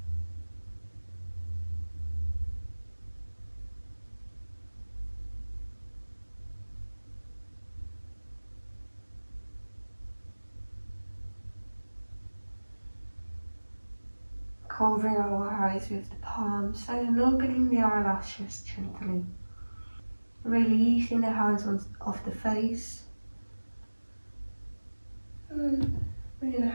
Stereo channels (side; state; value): both; inverted; correlation -1.00